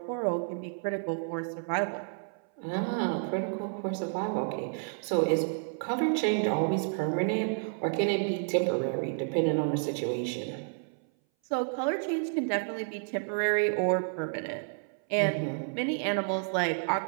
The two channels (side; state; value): left; silent; 57 dB below the other